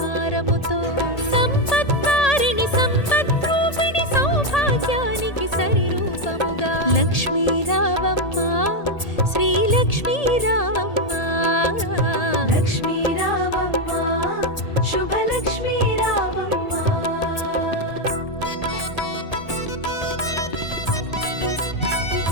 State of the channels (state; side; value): late; right; 1.8 ms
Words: సంపత్కారిణి సంపద్రూపిణి సౌభాగ్యానికి సరిరూపముగా లక్ష్మీ రావమ్మ శ్రీ లక్ష్మీ రావమ్మ లక్ష్మీ రావమ్మ శుభలక్ష్మీ రావమ్మ